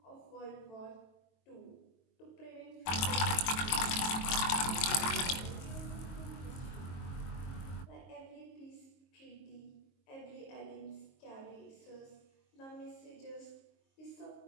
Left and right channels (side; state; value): right; late; 22 ms